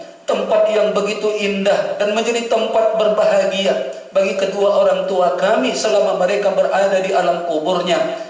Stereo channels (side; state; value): both; identical; correlation 1.00